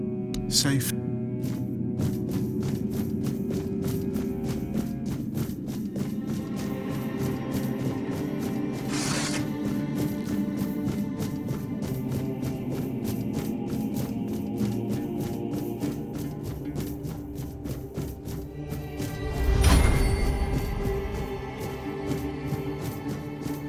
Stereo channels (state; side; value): identical; both; correlation 1.00